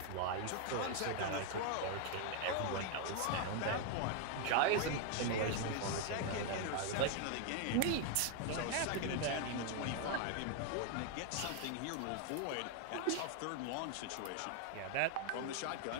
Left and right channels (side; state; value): both; different; correlation 0.00